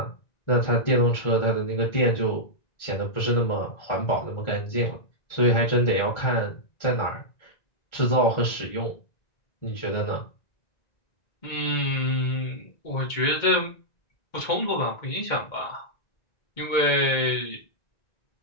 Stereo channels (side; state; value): right; late; 1.9 ms